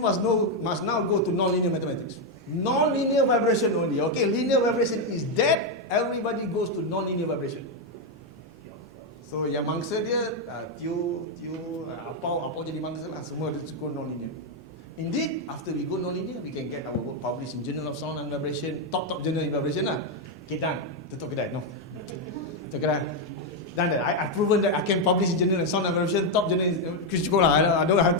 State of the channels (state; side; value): normal; both; correlation 0.03